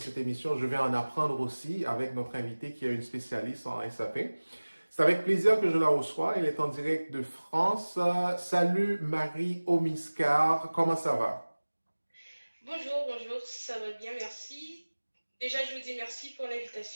émission, je vais en apprendre aussi avec notre invitée qui est une spécialiste en SAP. C'est avec plaisir que je la reçois. Elle est en direct de France. Salut Marie Omiscar, comment ça va? Bonjour, ça va bien, merci. Déjà, je vous dis merci pour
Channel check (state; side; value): inverted; both; correlation -1.00